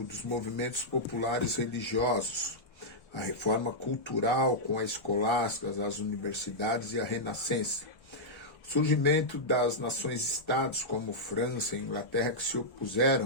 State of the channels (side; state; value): right; late; 1.3 ms